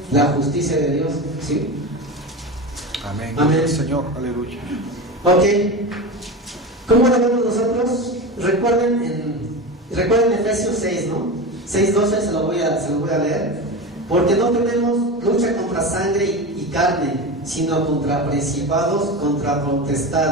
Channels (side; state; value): both; normal; correlation 0.24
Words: la justicia de Dios, ¿sí? Amén. Amén. Señor, aleluya. Ok. ¿Cómo lo vemos nosotros? Recuerden Efesios 6, ¿no? 6:12 se lo voy a leer. Porque no tenemos lucha contra sangre y carne, sino contra principados, contra